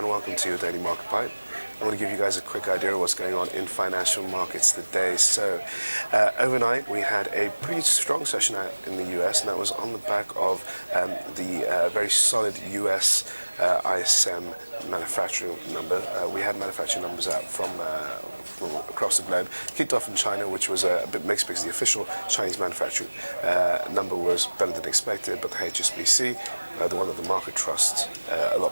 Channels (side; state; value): both; inverted; correlation -1.00